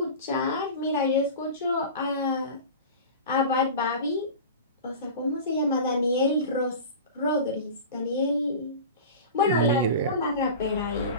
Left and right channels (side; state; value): both; inverted; correlation -0.33